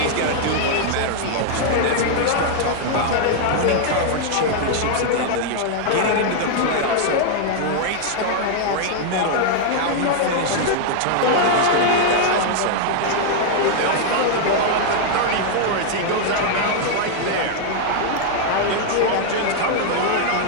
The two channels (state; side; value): different; both; correlation 0.00